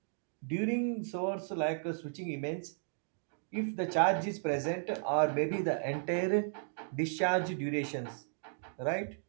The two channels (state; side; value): silent; left; digital silence